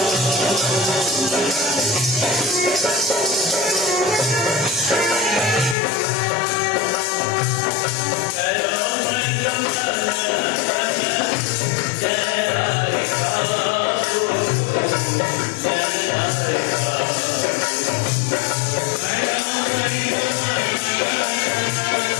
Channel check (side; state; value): right; drops out; at 5.8 s